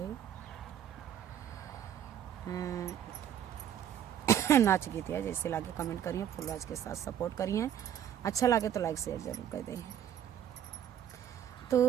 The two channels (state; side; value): quieter; left; 10.0 dB